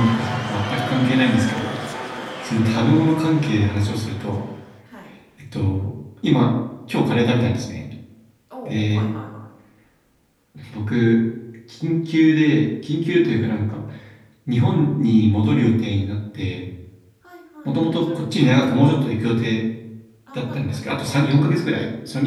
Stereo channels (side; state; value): both; identical; correlation 1.00